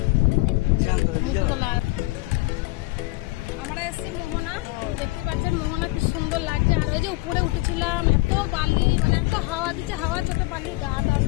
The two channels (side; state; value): right; quieter; 21.5 dB